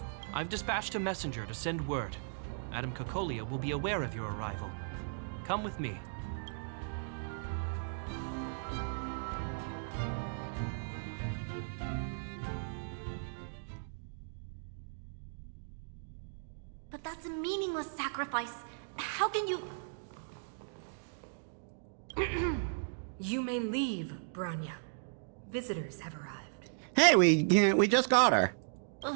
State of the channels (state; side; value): silent; left; digital silence